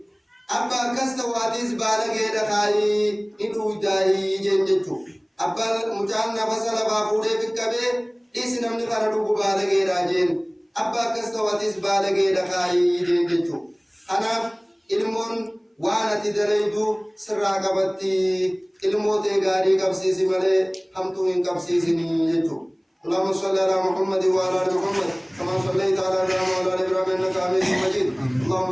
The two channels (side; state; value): both; identical; correlation 1.00